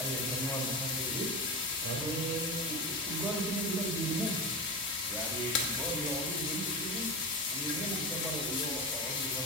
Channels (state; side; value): normal; both; correlation 0.23